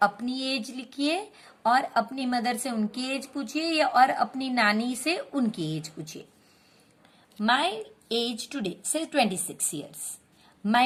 अपनी एज लिखिए और अपनी मदर से उनकी एज पूछिए, या और अपनी नानी से उनकी एज पूछिए। माई एज टुडे से 26 years.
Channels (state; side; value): identical; both; correlation 1.00